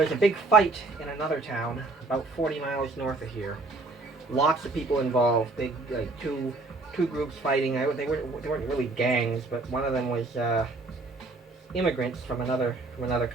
a big fight in another town about 40 miles north of here. Lots of people involved, big, like two groups fighting. They weren't really gangs, but one of them was immigrants from another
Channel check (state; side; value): quieter; left; 3.4 dB